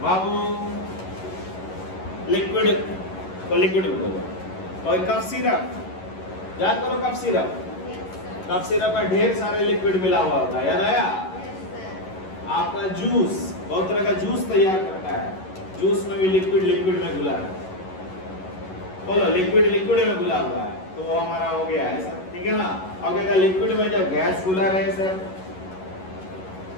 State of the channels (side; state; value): right; late; 11 ms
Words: Babu liquid को लिक्विड बोलो। और कफ सिरप, याद करो कफ सिरप, कफ सिरप में ढेर सारे लिक्विड मिला हुआ होता है, याद आया? आपका जूस, बहुत तरह का जूस तैयार करता है, जूस में भी लिक्विड लिक्विड में घुला है। बोलो लिक्विड लिक्विड में घुला हुआ है, तो वो हमारा हो गया है सर, ठीक है ना। अब क्या लिक्विड में जब गैस घुला रहे सर,